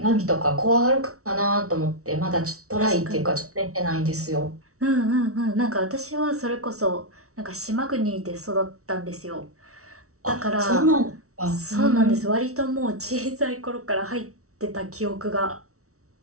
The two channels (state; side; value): late; left; 0.64 ms